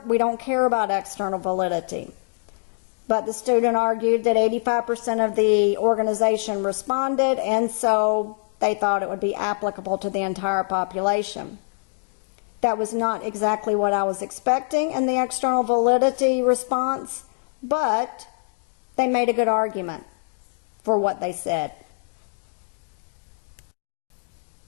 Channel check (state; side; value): silent; right; digital silence